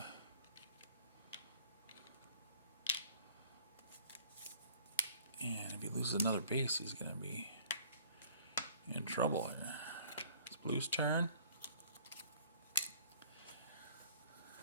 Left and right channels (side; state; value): both; inverted; correlation -0.54